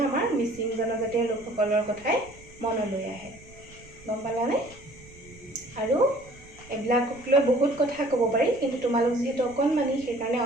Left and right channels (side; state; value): right; noise; rumble, 22 dB below the sound